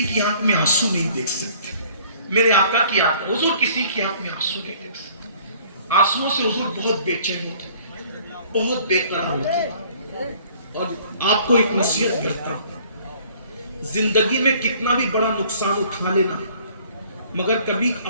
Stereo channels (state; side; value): inverted; both; correlation -0.55